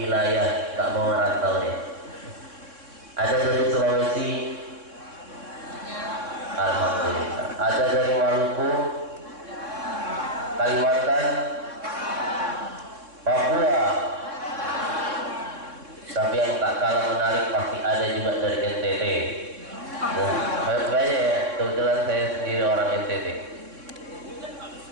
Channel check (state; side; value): late; left; 3.7 ms